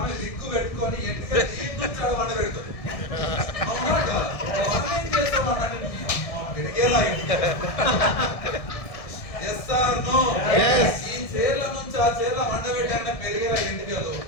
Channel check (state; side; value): late; right; 1.6 ms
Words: రిక్కు పెట్టుకొని ఎంటికలు వండ పెడుతుంది. అవునా కాదా? మనం ఏం చేస్తాం అంటే పెరిగేలా ఎస్ ఆర్ నో? ఈ చీరల నుంచి ఆ చీరల వండబెట్టాక పెరిగేలా ఎంటికలు